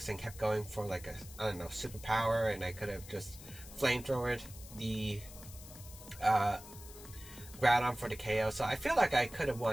and kept going for like a, I don't know, superpower, and I could have just flamethrowered the Groudon for the KO. So I feel like I could have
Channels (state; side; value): noise; left; hiss, 16 dB below the sound